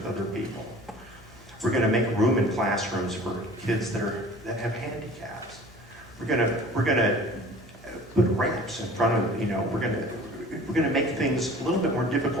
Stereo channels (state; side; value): normal; both; correlation 0.45